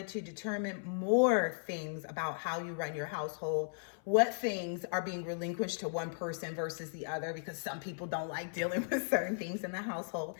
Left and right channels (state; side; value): silent; right; 54 dB below the other